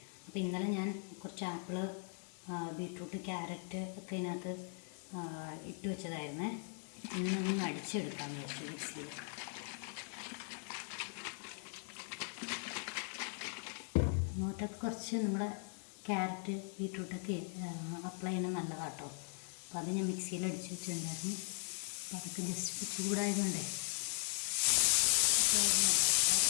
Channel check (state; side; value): silent; right; 52 dB below the other